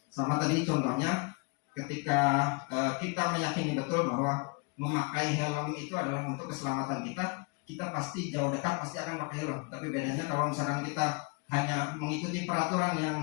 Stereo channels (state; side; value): quieter; right; 30.9 dB